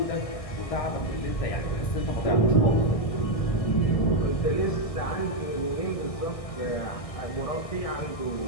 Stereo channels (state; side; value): late; right; 1.6 ms